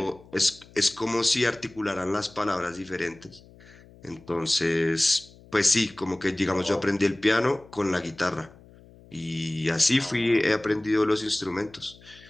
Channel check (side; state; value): left; noise; hum, 24 dB below the sound